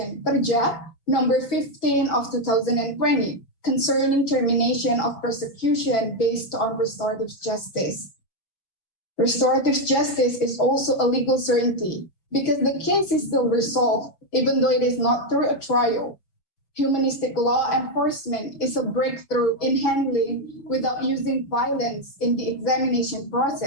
Perja, number 15 of 2020, concerning termination of prosecution based on restorative justice. Restorative justice is also a legal certainty because the case is still resolved, even though it is not through a trial. Humanistic law enforcement is a breakthrough in handling without using violence in the examination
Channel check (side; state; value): right; late; 5.9 ms